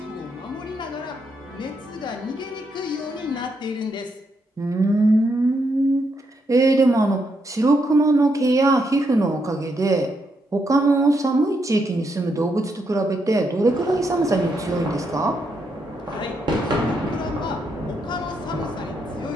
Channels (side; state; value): both; normal; correlation 0.79